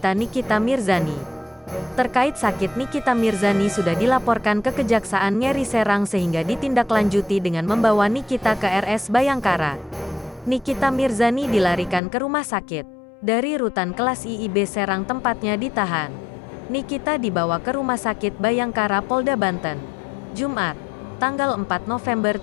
Nikita Mirzani. Terkait sakit Nikita Mirzani sudah dilaporkan ke Kejaksaan Negeri Serang sehingga ditindaklanjuti dengan membawa Nikita ke RS Bayangkara. Nikita Mirzani dilarikan ke rumah sakit dari rutan kelas IIB Serang tempatnya ditahan. Nikita dibawa ke Rumah Sakit Bayangkara Polda Banten, Jumat, tanggal 4 November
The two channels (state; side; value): drops out; right; at 12.0 s